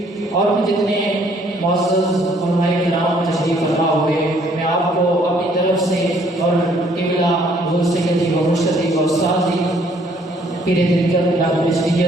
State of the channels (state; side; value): normal; both; correlation 0.63